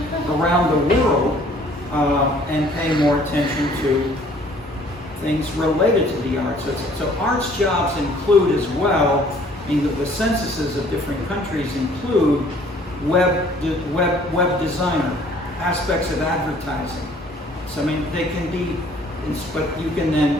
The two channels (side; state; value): both; normal; correlation 0.57